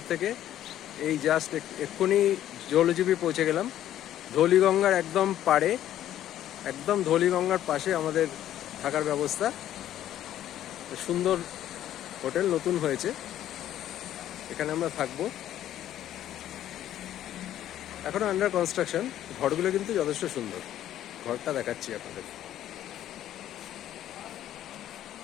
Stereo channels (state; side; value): quieter; right; 12.0 dB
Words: থেকে এই জাস্ট এক্ষুনি জলজীবী পৌঁছে গেলাম। ধৌলিগঙ্গার একদম পাড়ে, একদম ধৌলিগঙ্গার পাশে আমাদের থাকার ব্যবস্থা। সুন্দর হোটেল নতুন হয়েছে, এখানে আমরা থাকবো। এখনো আন্ডার কনস্ট্রাকশন। ঘরগুলো কিন্তু যথেষ্ট সুন্দর। ঘরটা দেখাচ্ছি আপনাদের।